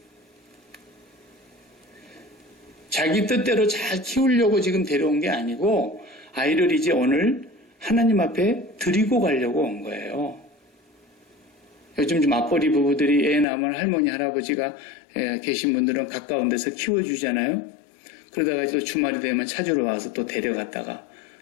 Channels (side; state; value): right; drops out; at 13.5 s